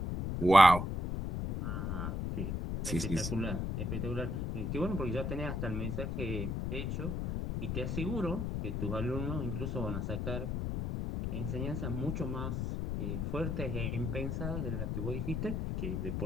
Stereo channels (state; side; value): noise; left; rumble, 1 dB below the sound